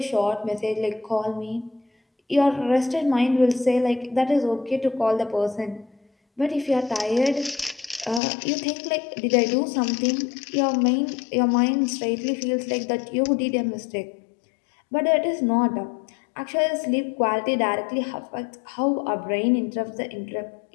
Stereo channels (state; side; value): drops out; right; at 8.2 s